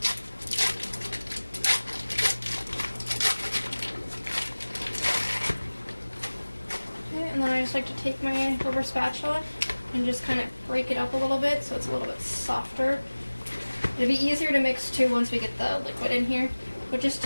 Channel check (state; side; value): inverted; both; correlation -1.00